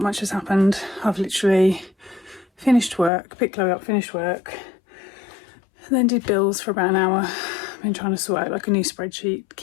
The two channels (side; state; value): right; drops out; at 3.1 s